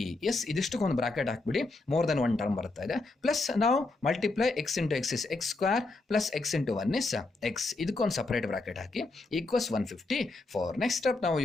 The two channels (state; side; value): quieter; right; 3.3 dB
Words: Yes, ಇದಿಷ್ಟಕ್ಕೊಂದು ಬ್ರಾಕೆಟ್ ಹಾಕ್ಬಿಡಿ. ಮೋರ್ ದೆನ್ ಒನ್ ಟರ್ಮ್ ಬರ್ತಾ ಇದೆ. Plus ನಾವು multiply x × x is x² plus x × 1 is x. ಇದಕ್ಕೊಂದು separate bracket hockey equals 154. Next step, now